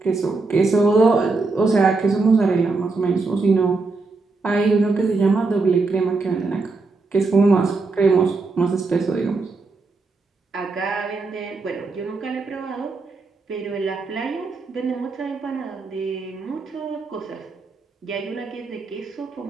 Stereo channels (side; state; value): left; quieter; 3.8 dB